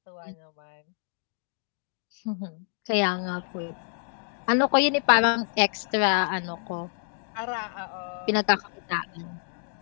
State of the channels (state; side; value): silent; right; 55 dB below the other